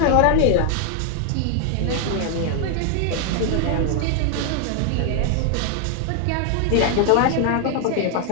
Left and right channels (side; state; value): both; different; correlation 0.00